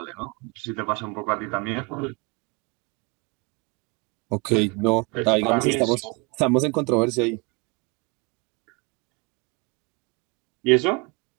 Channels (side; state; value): left; quieter; 29.7 dB